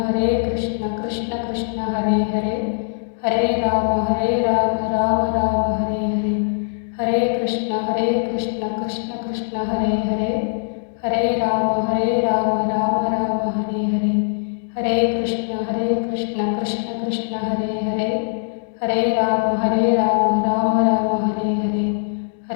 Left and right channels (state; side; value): silent; right; digital silence